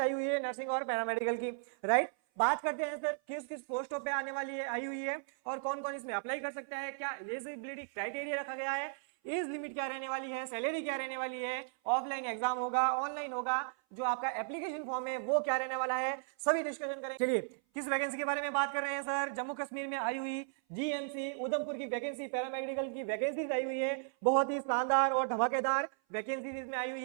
आई हुई है नर्सिंग और पैरामेडिकल की, राइट। बात करते हैं सर किस किस पोस्टों पे आने वाली है, आई हुई है, और कौन कौन इसमें अप्लाई कर सकता है, क्या एलिजिबिलिटी क्राइटेरिया रखा गया है, एज लिमिट क्या रहने वाली है, सैलरी क्या रहने वाली है, ऑफलाइन एग्जाम होगा, ऑनलाइन होगा, जो आपका एप्लीकेशन फॉर्म है वो क्या रहने वाला है, सभी डिस्कशन करें। चलिए किस वैकेंसी के बारे में बात कर रहे हैं सर? जम्मू कश्मीर में आई हुई जीएमसी उधमपुर की वैकेंसी, पैरामेडिकल की वैकेंसी आई हुई है। बहुत ही शानदार और धमाकेदार वैकेंसी इसमें आई हुई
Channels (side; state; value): left; silent; 54 dB below the other